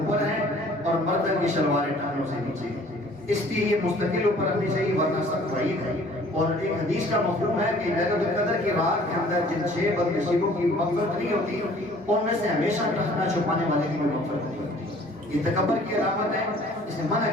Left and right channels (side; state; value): both; normal; correlation 0.53